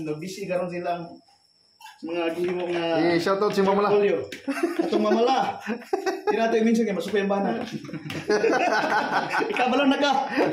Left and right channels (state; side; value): identical; both; correlation 1.00